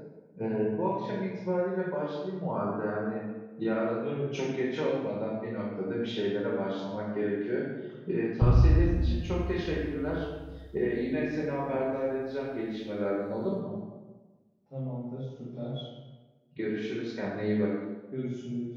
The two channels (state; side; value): identical; both; correlation 1.00